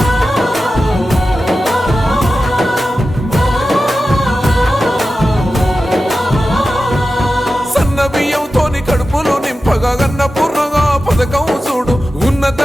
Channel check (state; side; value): normal; both; correlation 0.93